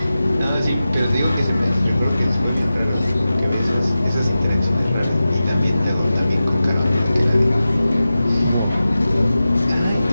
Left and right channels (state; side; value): inverted; both; correlation -0.94